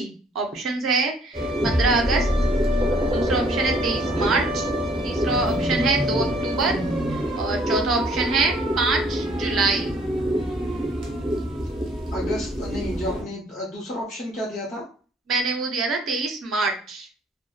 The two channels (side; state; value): both; normal; correlation 0.60